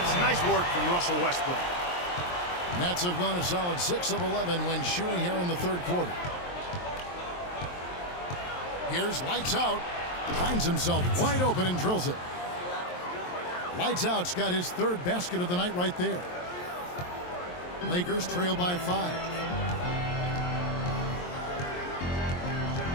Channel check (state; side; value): late; right; 23 ms